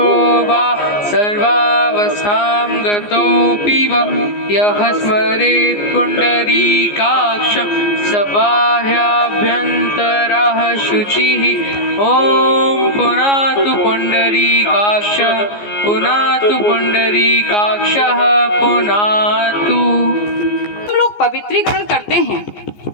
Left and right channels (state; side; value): late; right; 14 ms